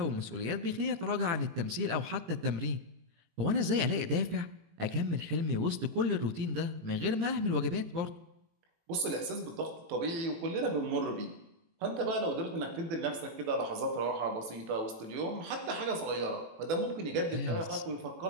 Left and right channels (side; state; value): left; late; 18 ms